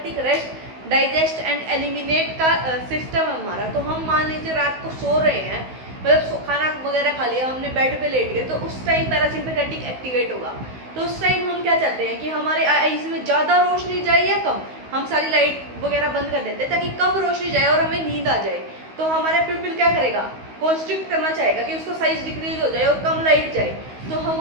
rest digest and eliminate का सिस्टम है हमारा। तो हम मान लीजिए रात को सो रहे हैं, मतलब खाना वगैरह खा लिया, हमने बेड पे लेट गए, तो उस टाइम पैरासिम्पैथेटिक एक्टिवेट होगा। तो उस टाइम हम क्या चाहते हैं कि हमारे आईज में ज़्यादा रोशनी जाए या कम, हम सारी लाइट वगैरह बंद कर देते हैं ताकि कम रोशनी जाए और हमें नींद आ जाए। तो हमारा प्यूपिल क्या करेगा, कॉन्स्ट्रिक्ट करना चाहेगा कि उसको साइज डिक्रीज हो जाए और कम लाइट जाए। तो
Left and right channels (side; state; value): left; late; 16 ms